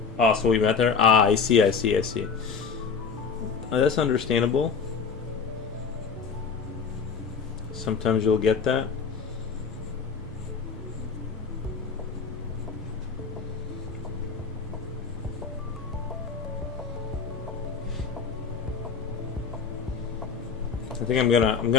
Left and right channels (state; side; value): quieter; right; 5.7 dB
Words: So we met there. Ah, I see. That's understandable. Sometimes you'll get that. I think I'm